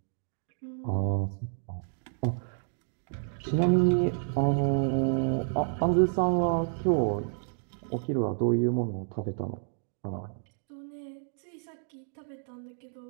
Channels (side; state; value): left; silent; digital silence